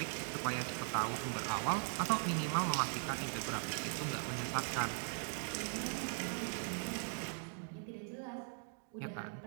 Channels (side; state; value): left; silent; 51 dB below the other